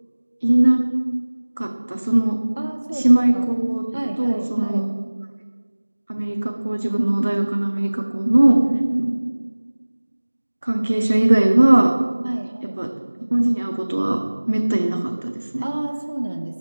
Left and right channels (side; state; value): both; inverted; correlation -1.00